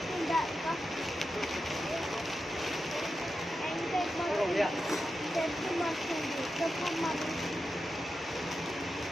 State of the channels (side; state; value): both; normal; correlation 0.89